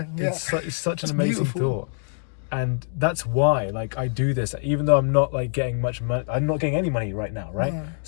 It's such an amazing thought. And that's why, like, I do this, even though I'm not like getting much money. I'm not getting any money right now, right? No.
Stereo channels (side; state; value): right; silent; digital silence